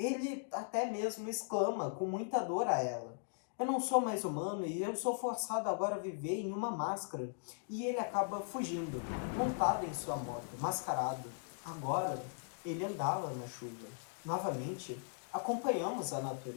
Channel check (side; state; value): right; silent; digital silence